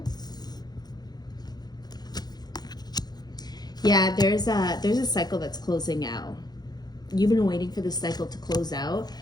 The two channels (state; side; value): late; right; 0.19 ms